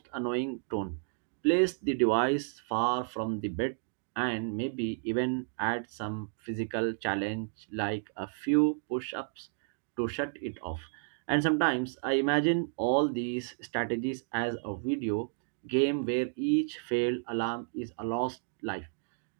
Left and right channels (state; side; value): silent; left; digital silence